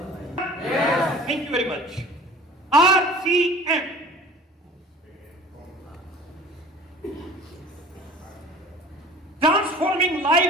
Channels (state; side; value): normal; both; correlation 0.45